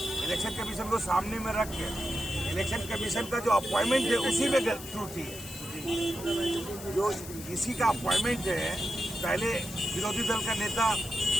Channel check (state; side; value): noise; left; hiss, 13 dB below the sound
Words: इलेक्शन कमीशन को सामने में रख के इलेक्शन कमीशन का जो अपॉइंटमेंट है उसी में त्रुटि है। जो इसी का अपॉइंटमेंट है, पहले विरोधी दल का नेता